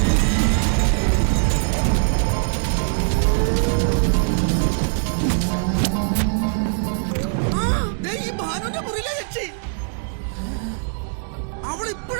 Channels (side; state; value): left; silent; digital silence